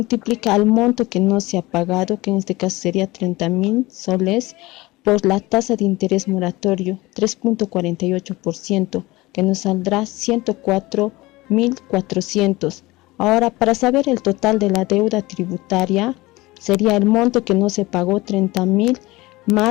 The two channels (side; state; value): right; quieter; 20.5 dB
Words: al monto que no se ha pagado, que en este caso sería 30.000 soles, por la tasa de interés moratorio 3.48%, que nos saldrá 104.400. Ahora, para saber el total de la deuda tributaria, sería el monto que no se pagó, 30.000,